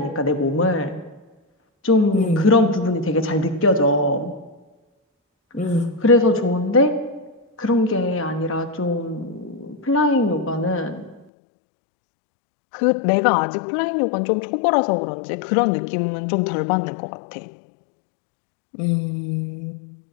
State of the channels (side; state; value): right; drops out; at 11.2 s